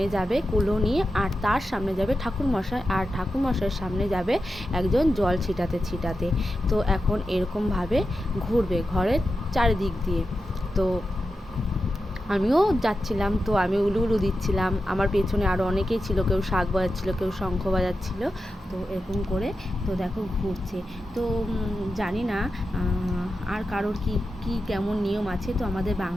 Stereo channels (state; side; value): normal; both; correlation 0.90